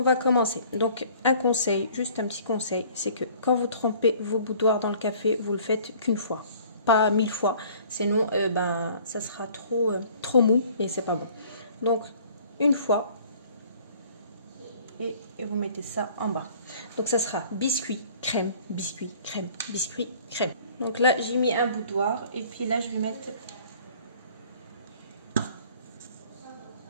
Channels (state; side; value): inverted; both; correlation -0.53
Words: va commencer. Donc un conseil, juste un petit conseil, c'est que quand vous trempez vos boudoirs dans le café, vous le faites qu'une fois, pas 1000 fois, sinon ça sera trop mou et c'est pas bon. Donc une fois. Et vous mettez ça en bas. Donc ça sera biscuit, crème, biscuit, crème, biscuit, crème. Donc là j'ai mis un boudoir et puis là je vais mettre